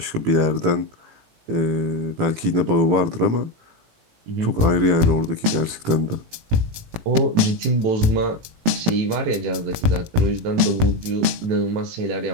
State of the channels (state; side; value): late; left; 18 ms